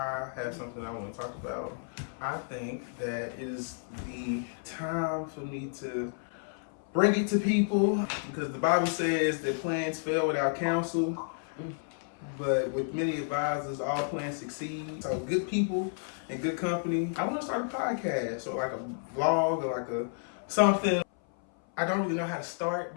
have something I want to talk about. I think that it is the time for me to bring it to people, because the Bible says that plans fail without counsel, but with many advisors, all plans succeed. So good people and good company. I want to start a podcast or like a vlog or like a something. I don't really know how to start,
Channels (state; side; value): silent; right; 57 dB below the other